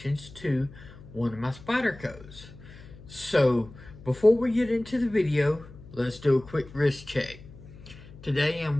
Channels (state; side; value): noise; left; hum, 18 dB below the sound